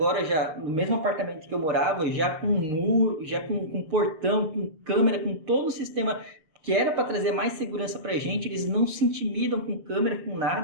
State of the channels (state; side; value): late; left; 6.5 ms